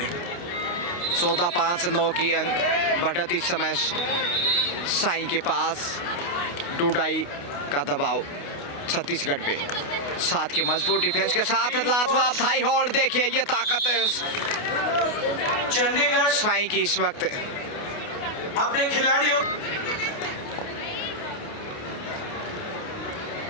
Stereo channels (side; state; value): right; late; 28 ms